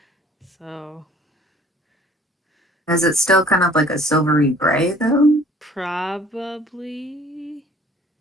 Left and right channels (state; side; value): normal; both; correlation 0.53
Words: So is it still kind of like a silvery gray though? probably